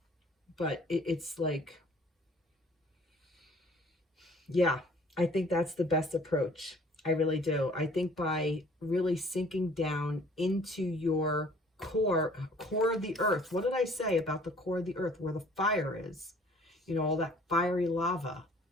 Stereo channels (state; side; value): normal; both; correlation 0.54